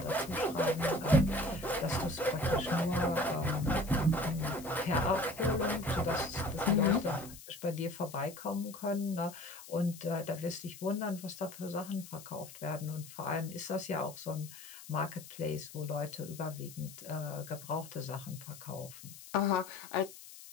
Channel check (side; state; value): left; noise; hiss, 16 dB below the sound